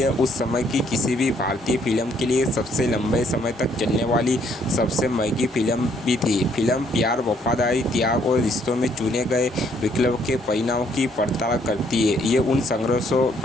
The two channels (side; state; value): both; normal; correlation 0.67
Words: उस समय की किसी भी भारतीय फिल्म के लिए सबसे लंबे समय तक चलने वाली सबसे महंगी फिल्म भी थी। फिल्म प्यार, वफादारी, त्याग और रिश्तों में चुने गए विकल्प के परिणामों की पड़ताल करती है। ये उन संघर्षों,